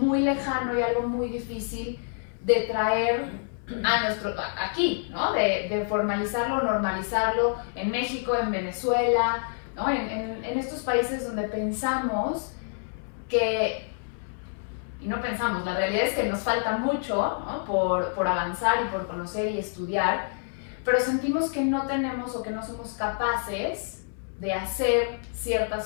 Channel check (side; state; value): right; silent; 59 dB below the other